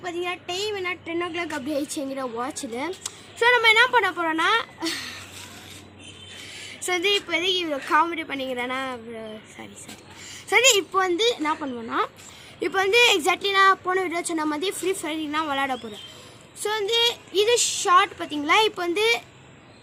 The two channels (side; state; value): both; identical; correlation 1.00